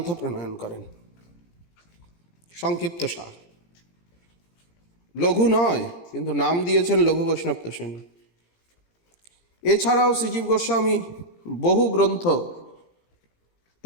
প্রণয়ন করেন। সংক্ষিপ্ত সার, লঘু নয় কিন্তু নাম দিয়েছেন লঘু বৈষ্ণব তোষণী। এছাড়াও শ্রীজীব গোস্বামী বহু গ্রন্থ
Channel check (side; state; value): right; late; 17 ms